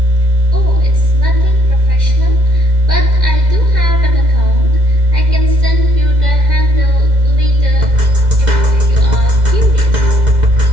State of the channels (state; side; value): late; left; 2.0 ms